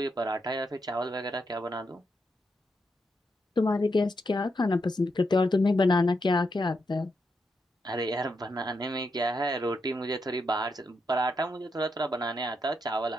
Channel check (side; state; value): both; normal; correlation 0.82